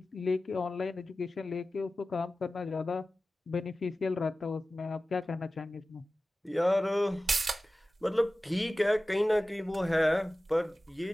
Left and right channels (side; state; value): both; normal; correlation 0.96